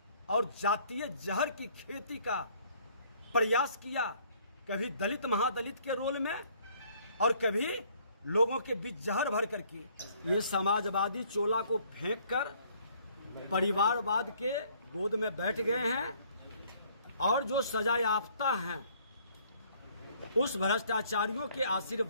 और जातीय जहर की खेती का प्रयास किया। कभी दलित महादलित के रोल में और कभी लोगों के बीच जहर भर करके। ये समाजवादी चोला को फेंक कर परिवारवाद के गोद में बैठ गए हैं और जो सजा याफ्ता हैं उस भ्रष्टाचारियों के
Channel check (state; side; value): inverted; both; correlation -0.61